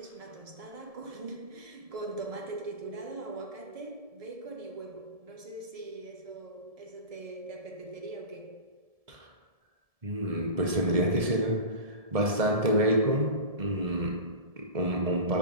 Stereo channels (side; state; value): left; late; 1.7 ms